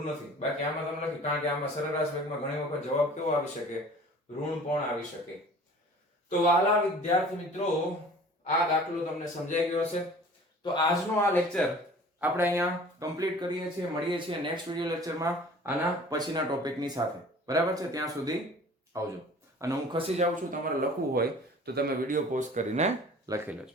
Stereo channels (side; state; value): both; normal; correlation 0.46